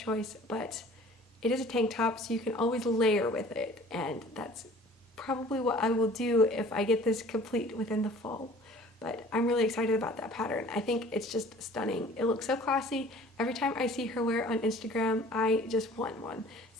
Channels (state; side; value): normal; both; correlation 0.49